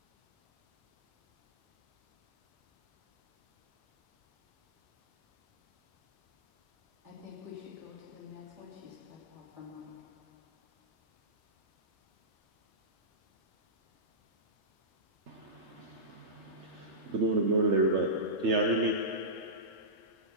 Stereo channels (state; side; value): normal; both; correlation -0.17